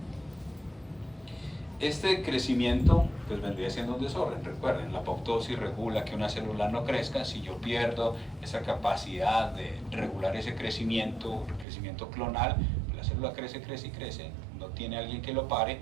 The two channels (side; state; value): left; drops out; at 11.7 s